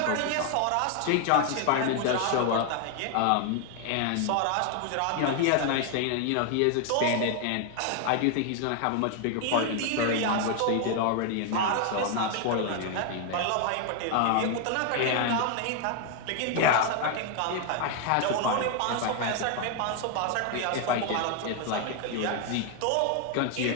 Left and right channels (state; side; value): different; both; correlation 0.00